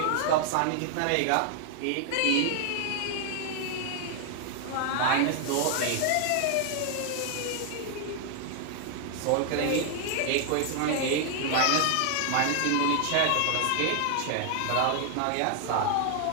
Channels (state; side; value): different; both; correlation 0.00